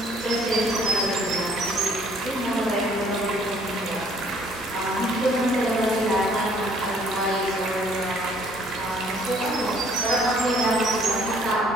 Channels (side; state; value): both; normal; correlation 0.60